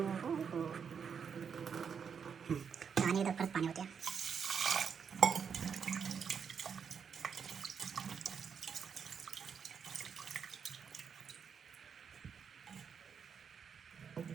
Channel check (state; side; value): quieter; left; 6.8 dB